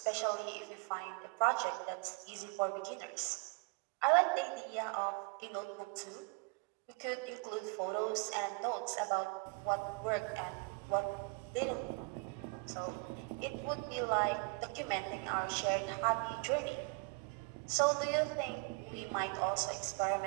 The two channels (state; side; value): quieter; left; 32.3 dB